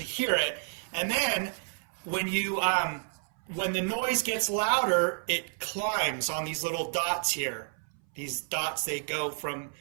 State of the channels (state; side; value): silent; left; 58 dB below the other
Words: hear it. And then when the noise gets louder, it climbs on these little dots here. These dots, they go from